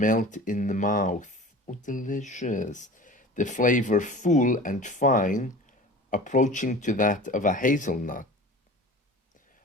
in the mouth. Oh, delicious. The flavor full and fine, approaching to that of a hazelnut.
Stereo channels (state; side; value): normal; both; correlation 0.39